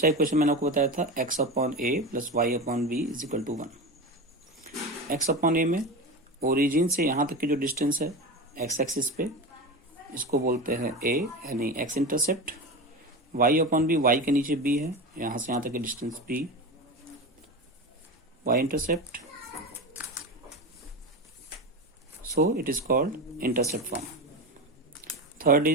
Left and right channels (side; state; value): both; normal; correlation 0.24